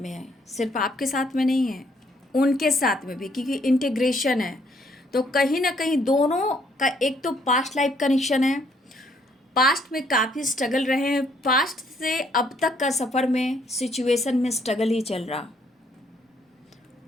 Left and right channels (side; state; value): both; normal; correlation 0.68